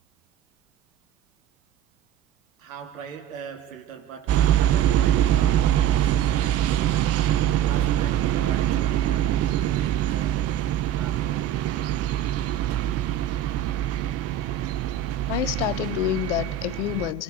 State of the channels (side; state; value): left; quieter; 8.6 dB